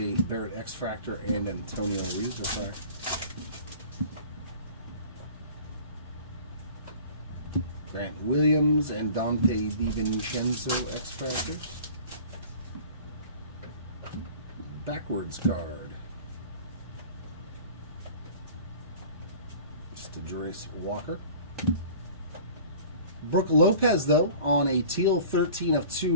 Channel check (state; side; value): inverted; both; correlation -0.44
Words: Barrett X-Fractor, and Antonio Reeves refractor. Grant Williams and Dante DiVincenzo X-Fractors. Backwards card. Just a Jurace Walker. Brooke Lopez, though, on a teal 13 of